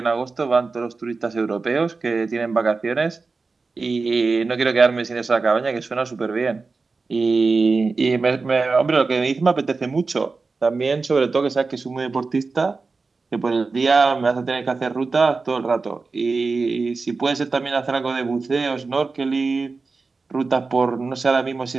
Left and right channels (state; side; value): quieter; left; 4.1 dB